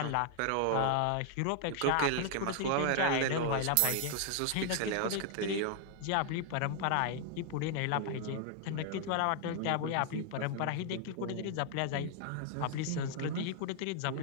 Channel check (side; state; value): both; different; correlation 0.00